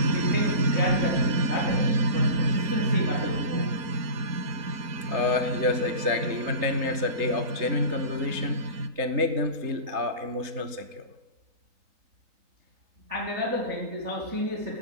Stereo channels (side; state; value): left; late; 3.9 ms